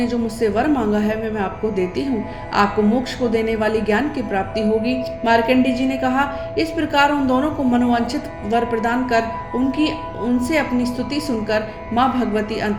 जो मुझसे वर मांगा है मैं आपको देती हूँ। आपको मोक्ष को देने वाली ज्ञान की प्राप्ति होगी। मार्कंडे जी ने कहा, इस प्रकार उन दोनों को मनोवांछित वर प्रदान कर उनसे अपनी स्तुति सुनकर माँ भगवती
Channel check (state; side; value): identical; both; correlation 1.00